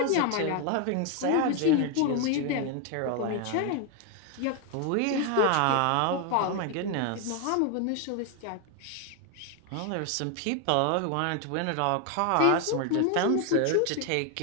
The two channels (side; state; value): both; different; correlation 0.01